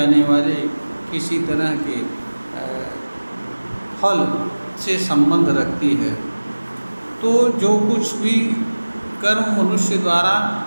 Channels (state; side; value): inverted; both; correlation -1.00